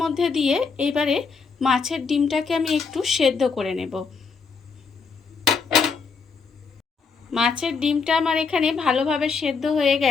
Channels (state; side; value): quieter; right; 5.1 dB